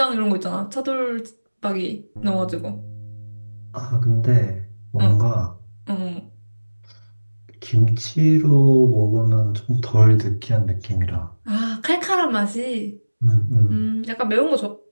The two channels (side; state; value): both; inverted; correlation -1.00